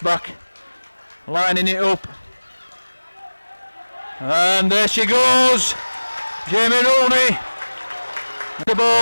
back, lining it up. And there she goes. Jamie Rooney. The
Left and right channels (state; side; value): inverted; both; correlation -1.00